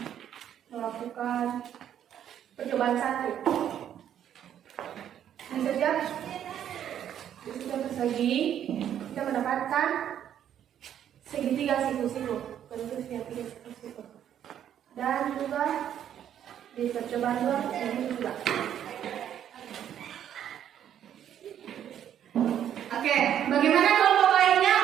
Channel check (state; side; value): quieter; left; 10.0 dB